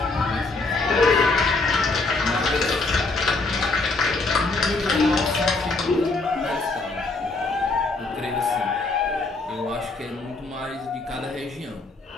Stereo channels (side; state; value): right; quieter; 3.5 dB